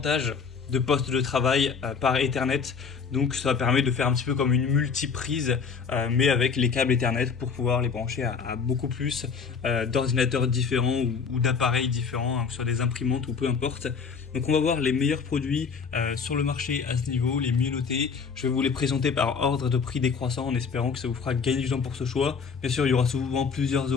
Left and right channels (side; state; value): right; quieter; 5.7 dB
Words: de postes de travail par Ethernet. Donc ça permet de faire un petit peu comme une multiprise mais avec les câbles Ethernet pour pouvoir les brancher à beaucoup plus d'ordinateurs différents ou d'appareils différents, hein, que ce soit des imprimantes ou peu importe. Donc on va voir les meilleurs produits sur le marché à ce niveau, les mieux notés. Je vais vous les présenter par ordre de prix décroissant en espérant que ça vous fera gagner du temps pour ce choix. Bien sûr, il y aura souvent plusieurs